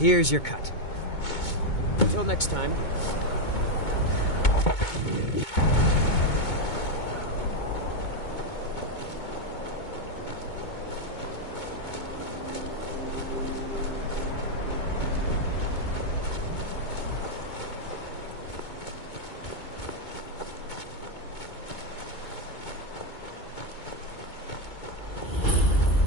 your cut. Until next time,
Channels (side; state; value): right; late; 2.2 ms